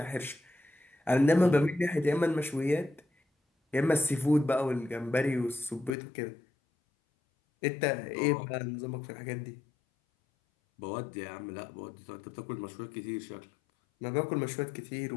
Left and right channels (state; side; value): drops out; right; at 6.0 s